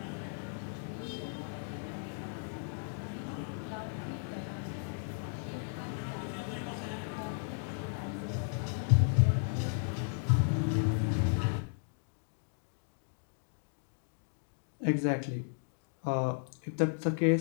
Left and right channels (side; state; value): right; silent; digital silence